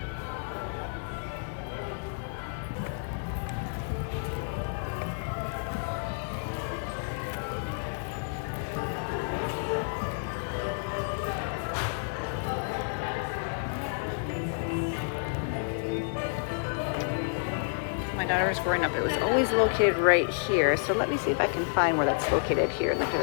My daughter was growing up, it was always located right here. So let me see if I can find where that's located here in the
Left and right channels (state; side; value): silent; right; 58 dB below the other